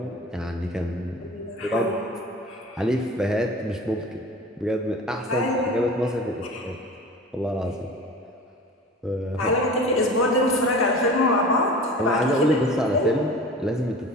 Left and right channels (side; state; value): both; normal; correlation 0.38